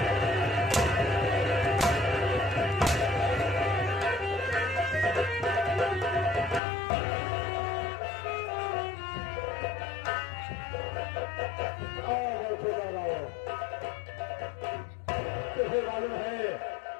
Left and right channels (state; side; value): drops out; right; at 6.6 s